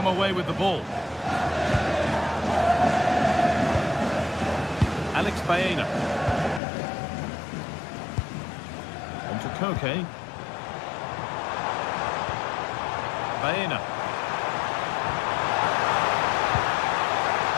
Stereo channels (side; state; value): right; drops out; at 6.6 s